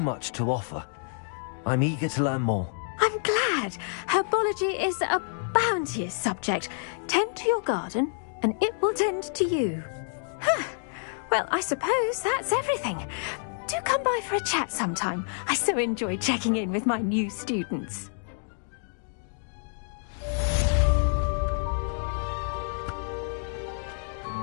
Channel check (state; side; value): silent; right; digital silence